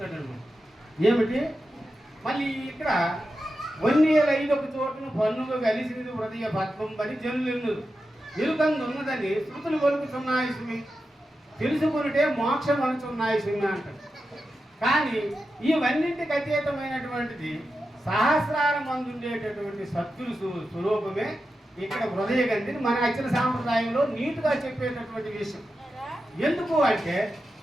అనమాట. ఏమిటి మళ్ళీ ఇక్కడ వన్నేలైదొక చోటును పన్నుగా కలిసినది హృదయ పద్మం పని జనులు ఎరుకందున్నదని శృతులు కొలుకుతున్నాయి సుమి, తెలుసుకునిటే మోక్షం అనుచున్నాయి సుమి అంటారు. కానీ ఇవన్నింటికి అతీతమైనటువంటిది సహస్రాల మందు ఉండేటటువంటి సత్తులు స్వరూపమే ఇక్కడ హృదయ గంధిని మన అచ్చల సాంప్రదాయంలో నీట్గా చెప్పేటటువంటి విషయం. ఎందుకు అంటే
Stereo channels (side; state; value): both; normal; correlation 0.90